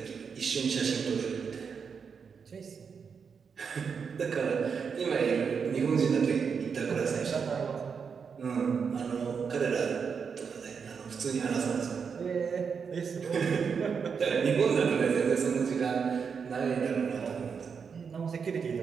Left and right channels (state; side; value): quieter; left; 6.1 dB